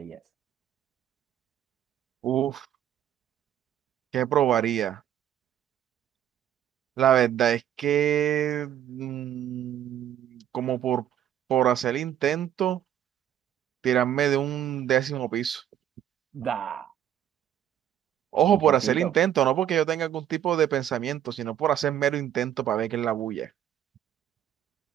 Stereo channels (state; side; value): quieter; left; 10.7 dB